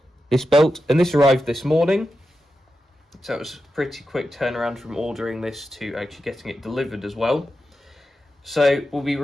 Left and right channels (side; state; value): both; normal; correlation 0.90